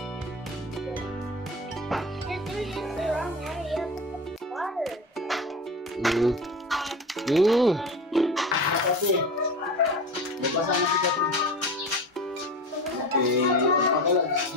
do this the wrong way. You have to put water. Kasi, magbasa na si Katin. Okay, pagkala,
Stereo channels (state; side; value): normal; both; correlation 0.29